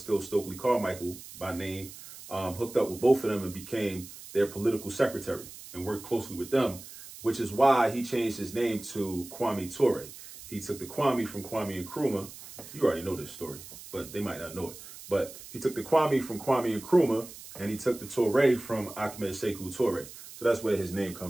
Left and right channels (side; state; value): right; noise; hiss, 15 dB below the sound